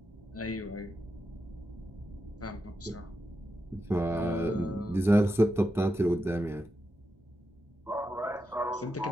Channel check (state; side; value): normal; both; correlation 0.87